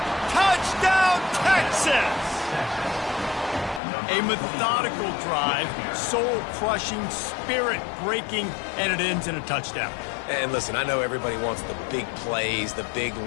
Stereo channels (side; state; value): right; drops out; at 3.8 s